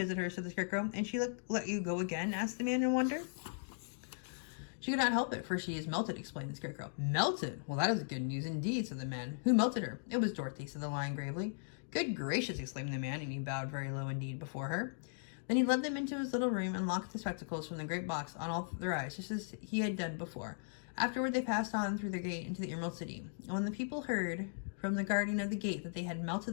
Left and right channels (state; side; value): silent; right; digital silence